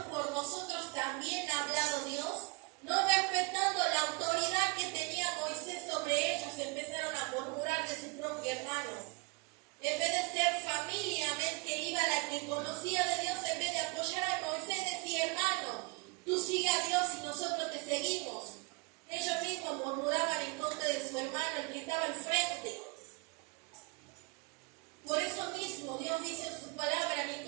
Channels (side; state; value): left; quieter; 28.1 dB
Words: por nosotros también ha hablado Dios? No respetando la autoridad que tenía Moisés sobre ellos, empezaron a murmurar de su propio hermano. En vez de ser familia, amén, que iba la que conocía de Dios, en vez de apoyar a Moisés, decía, hermano, tú sigue a Dios y nosotros te seguimos. Ellos mismos murmuraban en contra de su hermano, el que estaba enfrente. Por eso mismo Dios dice en su palabra,